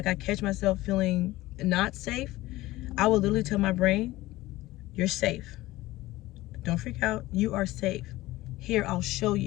catch myself feeling not safe, I will literally tell my brain, you're safe. Don't freak out. You are safe. Here, I'll show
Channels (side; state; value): right; quieter; 17.8 dB